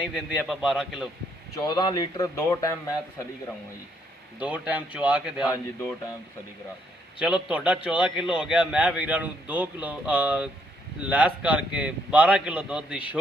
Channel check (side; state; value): both; normal; correlation 0.71